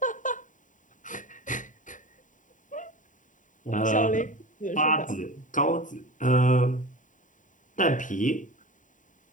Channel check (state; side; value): late; right; 0.37 ms